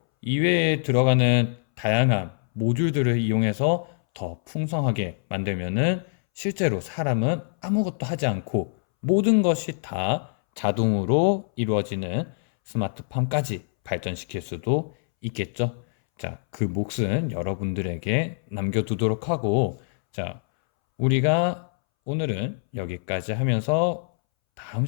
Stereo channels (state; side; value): silent; right; 62 dB below the other